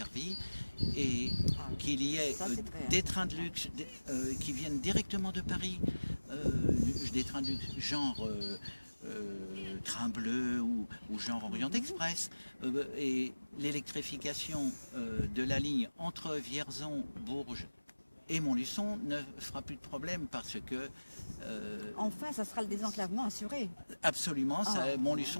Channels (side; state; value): both; inverted; correlation -1.00